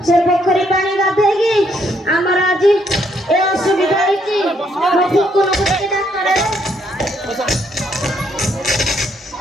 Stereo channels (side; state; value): both; normal; correlation 0.72